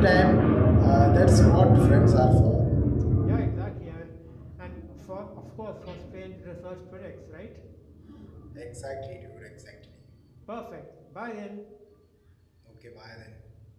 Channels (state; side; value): identical; both; correlation 1.00